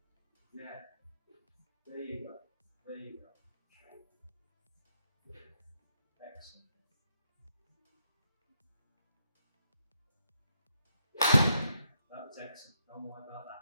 Yeah. There you go. There you go. Excellent. That was excellent. Don't worry about that.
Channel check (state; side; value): inverted; both; correlation -0.80